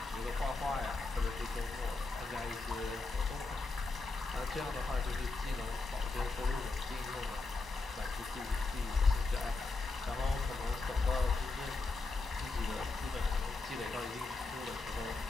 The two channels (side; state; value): right; quieter; 3.7 dB